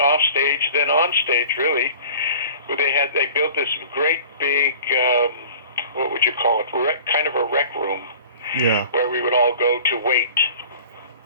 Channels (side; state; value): both; inverted; correlation -0.44